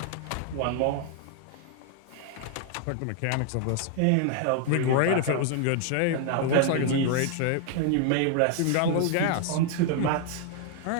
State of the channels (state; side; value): different; both; correlation 0.00